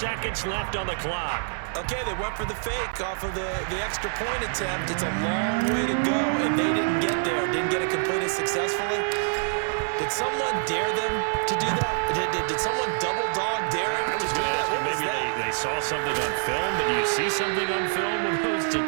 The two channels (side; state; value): left; silent; digital silence